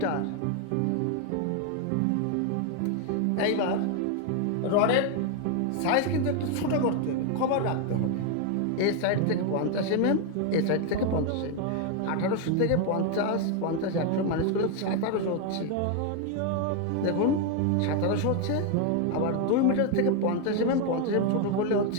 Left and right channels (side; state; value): both; different; correlation 0.01